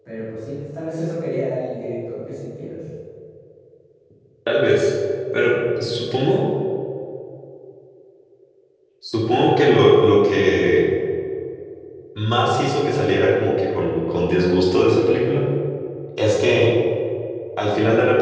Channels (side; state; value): both; identical; correlation 1.00